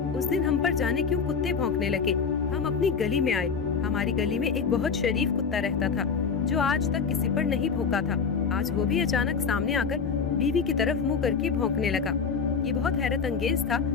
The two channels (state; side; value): quieter; right; 5.7 dB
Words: उस दिन हम पर जाने क्यों कुत्ते भौंकने लगे। हम अपनी गली में आए। हमारी गली में एक बहुत शरीफ कुत्ता रहता था जो आज तक किसी पर नहीं भौंका था। आज वो भी अचानक सामने आकर बीवी की तरफ मुंह करके भौंकने लगा। ये बहुत हैरत अंगेज था,